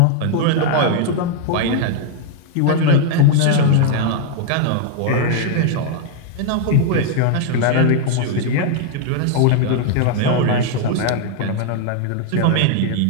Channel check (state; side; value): different; both; correlation 0.00